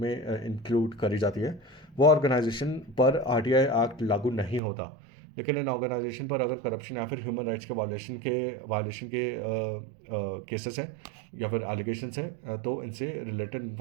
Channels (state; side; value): drops out; left; at 4.6 s